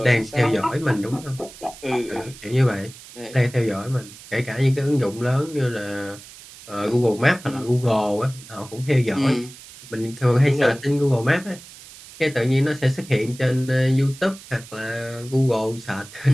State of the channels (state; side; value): noise; right; hiss, 18 dB below the sound